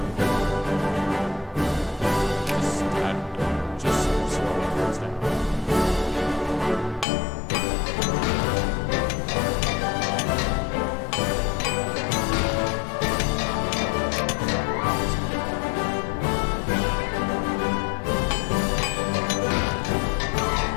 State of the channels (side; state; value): right; drops out; at 7.1 s